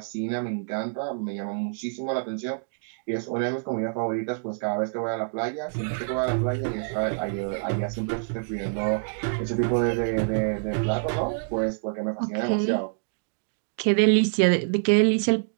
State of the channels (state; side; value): silent; left; digital silence